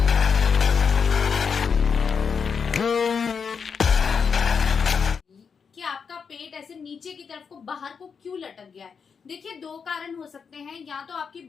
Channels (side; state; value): right; quieter; 6.1 dB